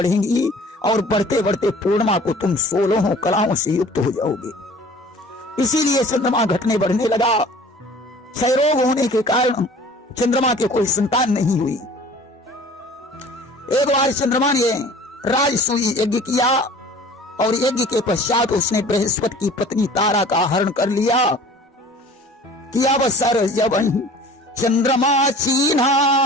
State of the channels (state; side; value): normal; both; correlation 0.47